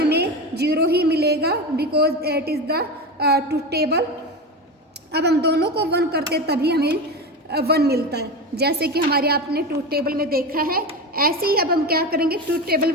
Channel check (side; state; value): both; normal; correlation 0.22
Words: 0 ही मिलेगा because it is the truth table अब हम दोनों को 1 करते तभी हमें 1 मिलता है, जैसे कि हमारे आपने ट्रूथ टेबल में देखा है। ऐसे ही अब हम क्या करेंगे, ट्रूथ टेबल